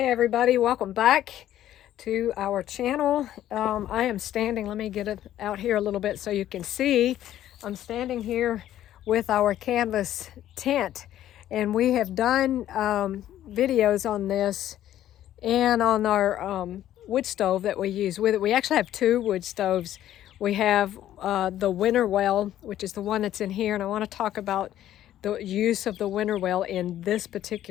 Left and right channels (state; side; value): quieter; right; 12.3 dB